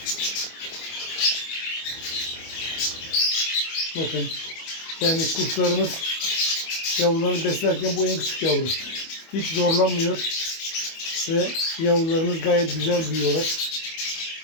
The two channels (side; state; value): right; late; 25 ms